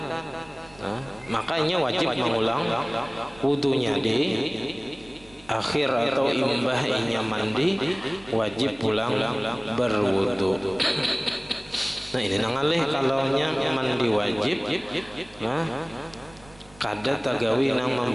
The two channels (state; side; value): noise; right; rumble, 25 dB below the sound